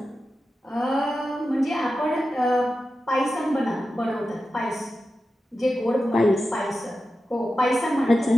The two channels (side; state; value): both; normal; correlation 0.92